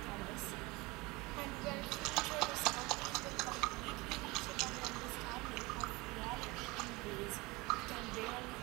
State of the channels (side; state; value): left; quieter; 23.6 dB